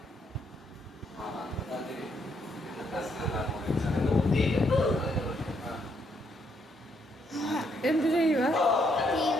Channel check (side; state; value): both; normal; correlation 0.73